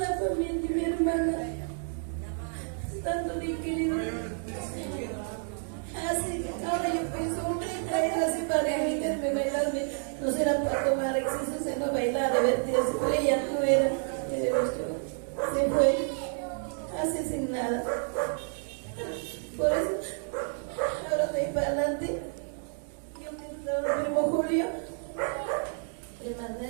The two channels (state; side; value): silent; left; 57 dB below the other